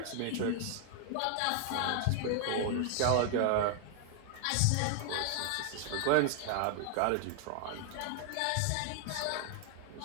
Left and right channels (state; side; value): different; both; correlation 0.00